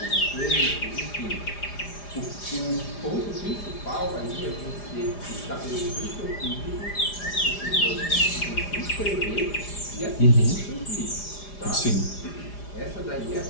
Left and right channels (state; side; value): late; right; 4.9 ms